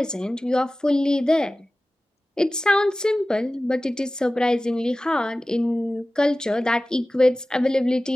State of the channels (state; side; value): normal; both; correlation 0.96